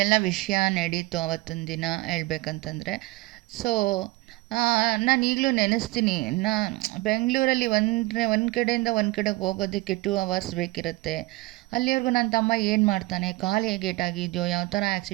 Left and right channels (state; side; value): quieter; left; 21.1 dB